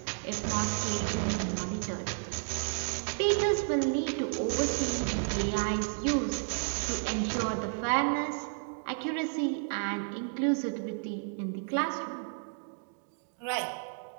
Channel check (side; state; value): left; silent; digital silence